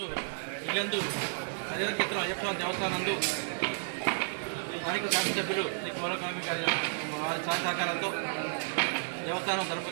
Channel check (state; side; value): silent; left; digital silence